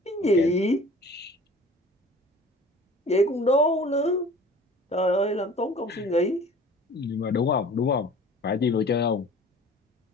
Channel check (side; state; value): both; normal; correlation 0.45